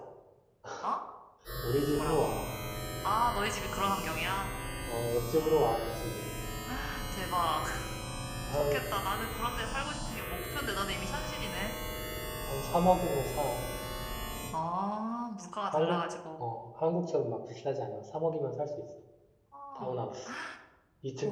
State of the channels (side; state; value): both; identical; correlation 1.00